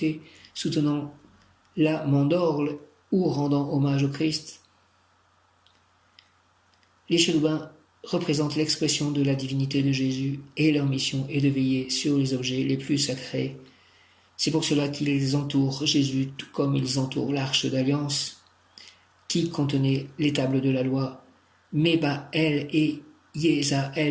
soutenant la mandorle ou rendant hommage au Christ. Les chérubins représentent l'expression de la divinité de Jésus et leur mission est de veiller sur les objets les plus sacrés. C'est pour cela qu'ils entourent Jésus tout comme ils entourent l'arche d'alliance qui contenait les tables de la loi. Mébaël et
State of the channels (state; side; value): identical; both; correlation 1.00